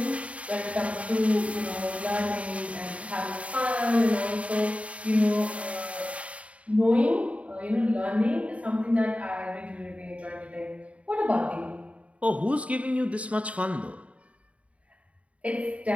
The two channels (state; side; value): late; left; 0.065 ms